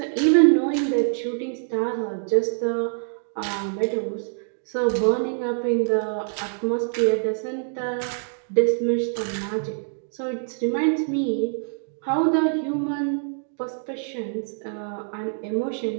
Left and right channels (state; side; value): silent; left; digital silence